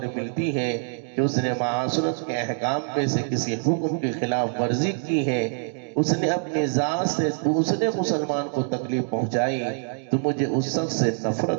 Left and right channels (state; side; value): silent; left; 62 dB below the other